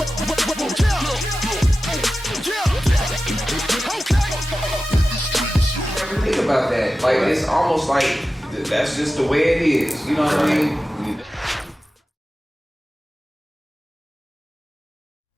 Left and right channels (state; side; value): normal; both; correlation 0.94